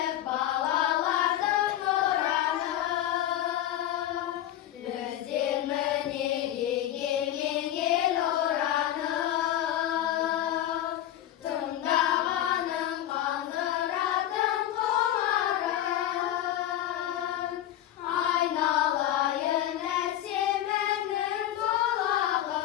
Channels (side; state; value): right; quieter; 12.3 dB